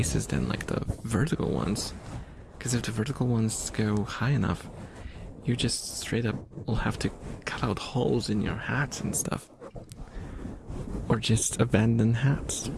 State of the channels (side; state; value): both; identical; correlation 1.00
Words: than like the vertical ones. Because if the vertical ones go high enough, you just straight up will have to cut out holes in your hats and stuff. Or just abandon hats.